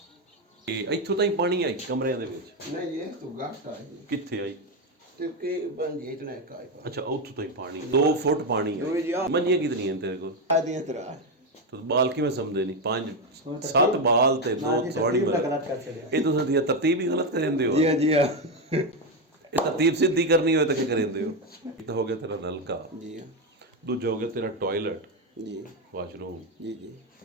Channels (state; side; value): normal; both; correlation 0.09